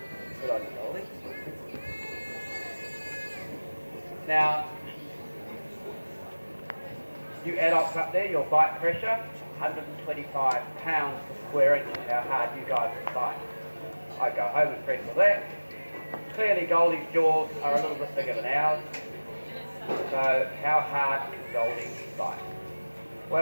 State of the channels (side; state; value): both; inverted; correlation -1.00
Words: Good on you, Goldie. Now, you adults up there, your bite pressure, 125 pounds per square inch is how hard you guys will bite. I go home impressed with that. Clearly Goldie's jaws are a little bit bigger than ours. So how hard can Goldie bite?